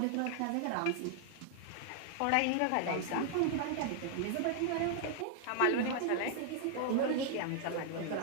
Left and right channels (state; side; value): different; both; correlation 0.00